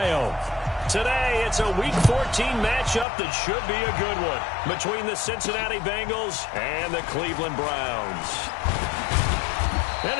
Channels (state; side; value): drops out; right; at 3.1 s